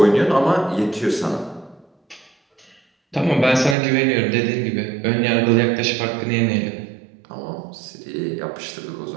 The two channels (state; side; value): drops out; left; at 3.8 s